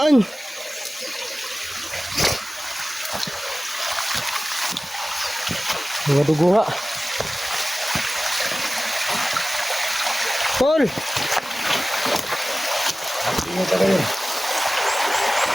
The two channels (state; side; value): normal; both; correlation 0.96